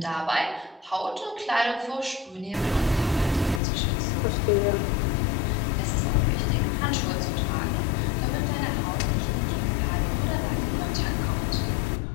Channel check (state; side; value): drops out; right; at 3.6 s